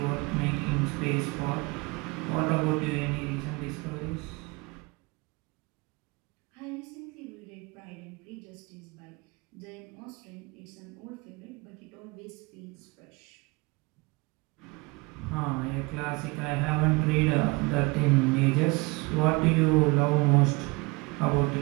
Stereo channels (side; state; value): left; quieter; 25.3 dB